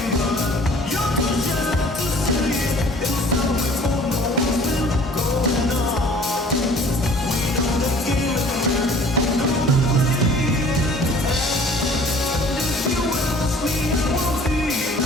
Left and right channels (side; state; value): both; normal; correlation 0.51